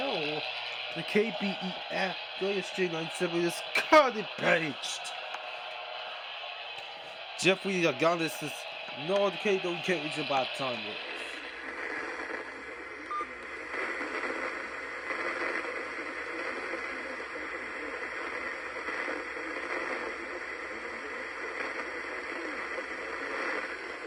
The KBEF Straight 97 is cut it paged. Jeffrey Agonis is no the K don't care it's about time.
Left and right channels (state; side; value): identical; both; correlation 1.00